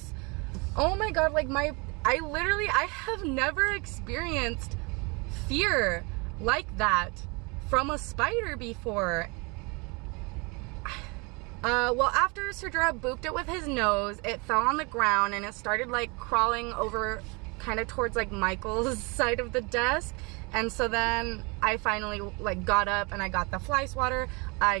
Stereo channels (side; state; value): left; quieter; 29.5 dB